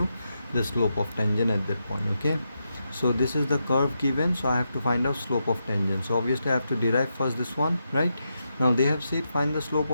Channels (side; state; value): both; inverted; correlation -0.85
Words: the slope of tangent at that point. Okay, so this is the curve given, so I have to find out slope of tangent. So obviously I have to derive first this one, right? Now they have said find the slope